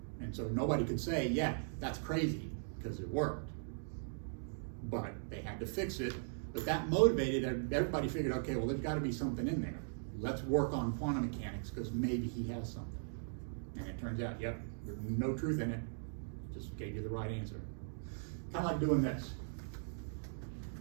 And so nobody could say, yeah, that's crazy, because it worked. But they had to fix it. But that motivated everybody. Figured, okay, well, there's got to be something in there. Let's work on quantum mechanics, because maybe he has something. And it turns out, yep, there's no truth in it. Just gave you the right answer. Kind of like doing this.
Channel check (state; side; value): silent; left; digital silence